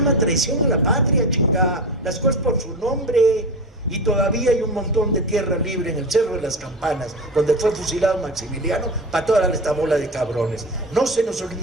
traición a la patria, chingada. Las cosas por su nombre. Y todavía hay un montón de tierra libre en el Cerro de las Campanas, donde fue fusilado Maximiliano, para toda esta bola de cabrones. No se nos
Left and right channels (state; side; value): normal; both; correlation 0.25